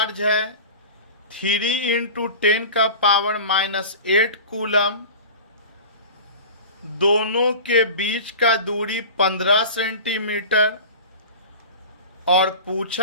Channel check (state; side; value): inverted; both; correlation -0.35